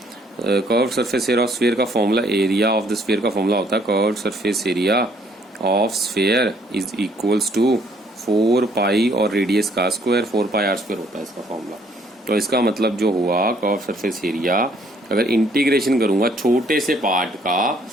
Curved surface area of sphere का formula, area of the sphere का फॉर्मूला होता है curved surface area of sphere is equals to 4 pi और रेडियस का स्क्वायर 4 पाई आर स्क्वायर होता है इसका फॉर्मूला। तो इसका मतलब जो हुआ कर्व सरफेस एरिया, अगर इंटीग्रेशन करूंगा छोटे से पार्ट का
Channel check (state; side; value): normal; both; correlation 0.64